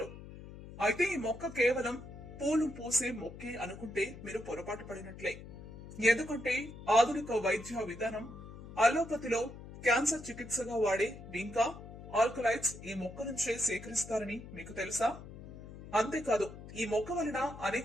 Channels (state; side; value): noise; left; hum, 14 dB below the sound